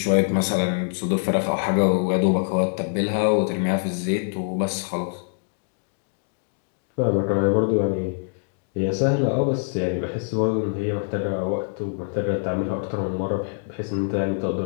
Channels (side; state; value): right; silent; digital silence